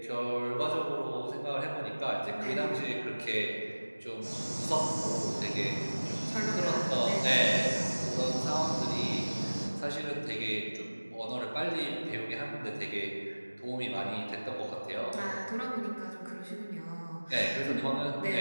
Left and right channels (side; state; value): both; inverted; correlation -1.00